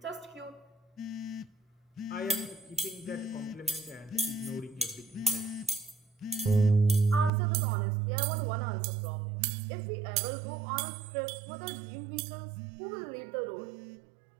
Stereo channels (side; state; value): left; drops out; at 7.3 s